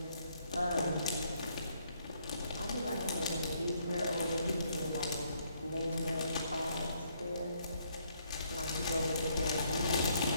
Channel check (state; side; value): inverted; both; correlation -0.70